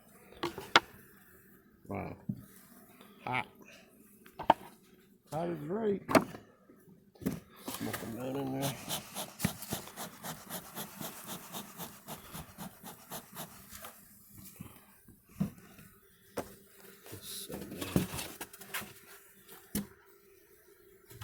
Wow. Hot. Hot is right. Smoking down in there.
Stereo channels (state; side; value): identical; both; correlation 1.00